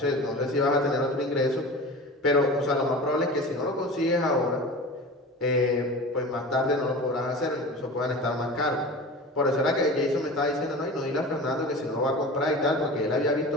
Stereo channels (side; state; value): both; normal; correlation 0.34